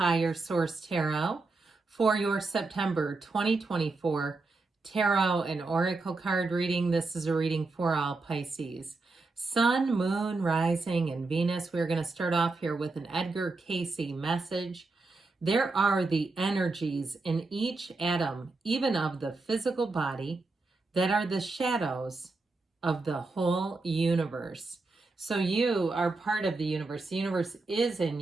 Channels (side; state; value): left; quieter; 3.6 dB